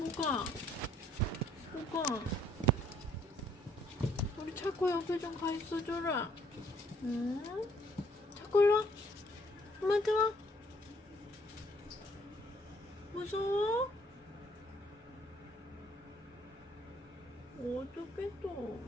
뭐가? 우리 차코 옆에 좀 가 있어 줘라. 응? 차코 일로 와. 엄마한테 와. 무서워? 어떡해 또.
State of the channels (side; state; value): both; normal; correlation 0.64